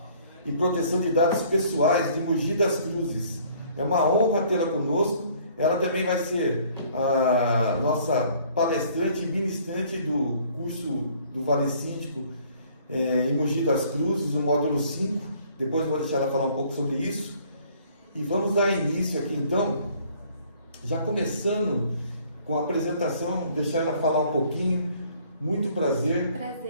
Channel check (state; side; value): inverted; both; correlation -0.58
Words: e Proteção de Dados Pessoais de Mogi das Cruzes. É uma honra tê-la conosco. Ela também vai ser a nossa palestrante e ministrante do curso do Vale Síndico em Mogi das Cruzes, o módulo 5. Depois eu vou deixar ela falar um pouco sobre isso. E vamos dar início aqui então, já começando com a apresentação, deixar ela falar um pouquinho. Muito prazer.